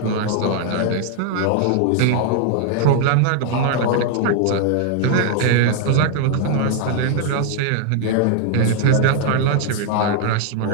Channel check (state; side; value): different; both; correlation 0.00